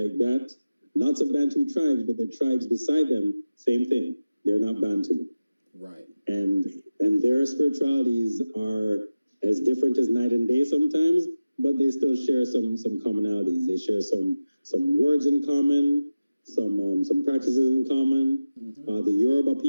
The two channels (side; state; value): both; inverted; correlation -0.96